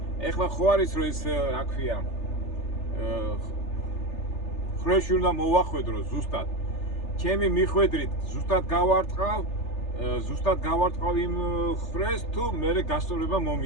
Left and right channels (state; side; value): late; right; 3.4 ms